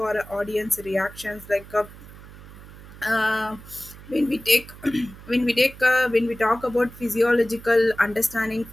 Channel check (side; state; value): right; noise; hum, 18 dB below the sound